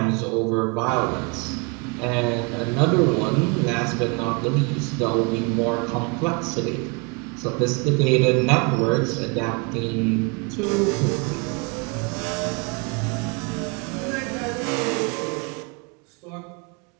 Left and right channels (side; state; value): left; quieter; 31.0 dB